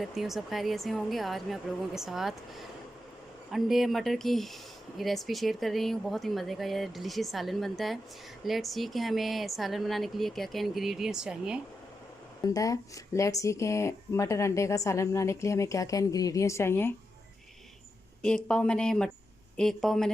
हूँ सब खैरियत से होंगे। आज मैं आप लोगों के साथ अंडे मटर की रेसिपी शेयर कर रही हूँ। बहुत ही मज़े का यह डिलीशियस सालन बनता है। लेट्स सी कि हमें सालन बनाने के लिए क्या क्या इंग्रेडिएंट्स चाहिए बनता है। लेट्स सी कि मटर अंडे का सालन बनाने के लिए हमें क्या क्या इंग्रेडिएंट्स चाहिए। एक पाव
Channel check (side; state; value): both; normal; correlation 0.87